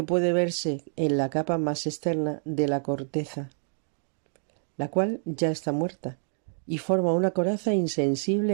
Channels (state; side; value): silent; left; 60 dB below the other